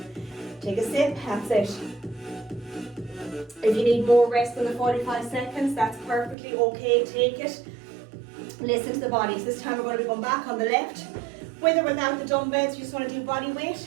Take a sip, that's it. If you need more rest than the 45 seconds, that's perfectly okay, take it. Listen to the body. So this time we're going to be going back on the left. With or without the dumbbells, you just want to do body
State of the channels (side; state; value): left; drops out; at 6.4 s